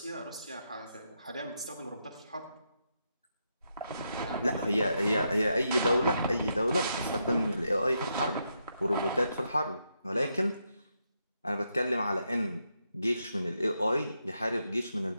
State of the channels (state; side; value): inverted; both; correlation -0.82